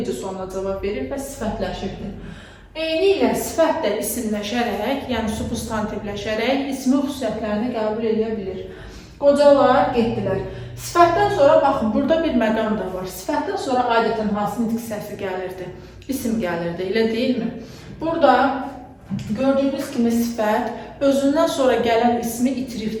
sualına cavab verir və sifətləşirdir. Eyni ilə sifət də isimləşərək, yəni substantivləşərək ismin xüsusiyyətlərini qəbul edə bilir. Qocalar getdilər. Sifətdən sonra, baxın, burada bir məqam da var. Sifətdən sonra adətən hansı nitq səsi gəlirdi? İsim gəlirdi, elə deyilmi? Burada gördüyünüz kimi sifət özündən sonra gələn ismi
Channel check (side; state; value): both; identical; correlation 1.00